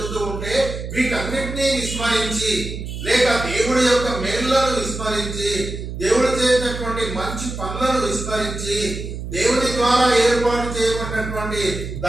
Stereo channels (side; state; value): right; noise; hum, 7 dB below the sound